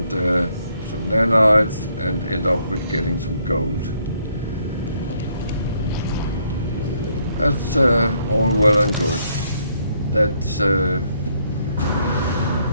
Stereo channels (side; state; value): both; inverted; correlation -0.70